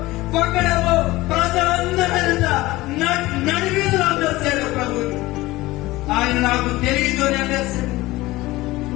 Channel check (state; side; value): quieter; right; 19.0 dB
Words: ఒకడేమో ప్రజలందరూ నడివీధులు అమ్మేస్తాడు ప్రభుని. ఆయన నాకు తెలియదు అని అమ్మేస్తాడు.